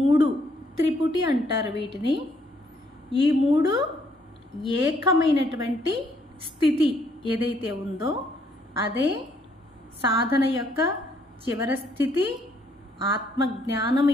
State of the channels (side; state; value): both; normal; correlation 0.68